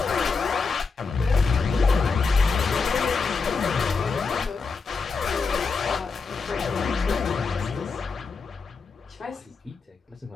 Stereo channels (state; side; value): quieter; right; 4.7 dB